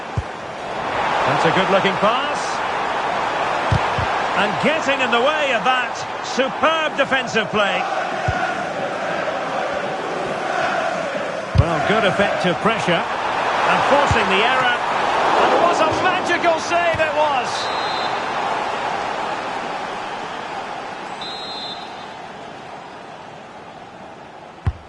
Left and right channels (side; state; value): both; identical; correlation 1.00